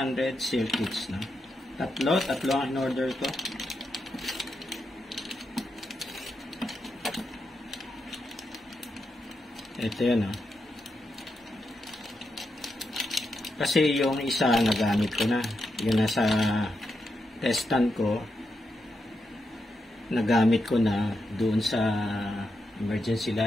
circuits na. Tatlo ang in-order ko. Ito yun, oh. Kasi yung isa nagamit ko na. Yung nasa testan ko, nagamit ko na doon sa emergency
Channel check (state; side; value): normal; both; correlation 0.85